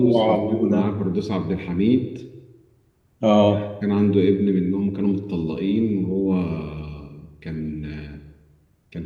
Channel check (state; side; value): identical; both; correlation 1.00